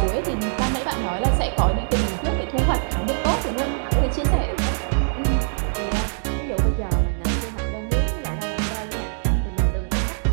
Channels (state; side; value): silent; left; digital silence